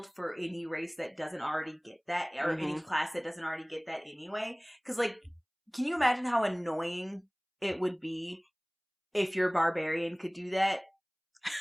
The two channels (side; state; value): both; identical; correlation 1.00